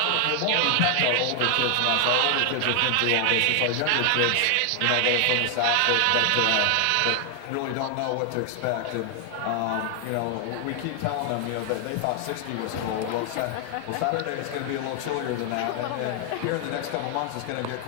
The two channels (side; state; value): both; different; correlation 0.00